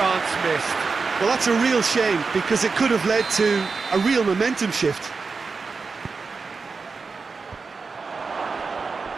missed. Well, that's a real shame because it could have led to a real momentum shift.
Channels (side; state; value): left; quieter; 4.6 dB